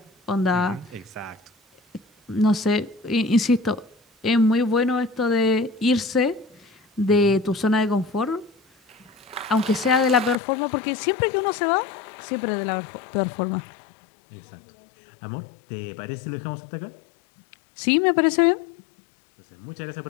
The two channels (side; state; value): right; drops out; at 10.4 s